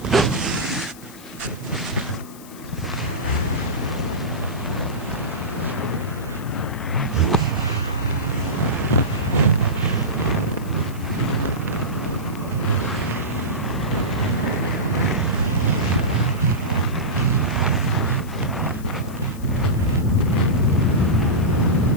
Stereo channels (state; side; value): noise; left; hiss, 20 dB below the sound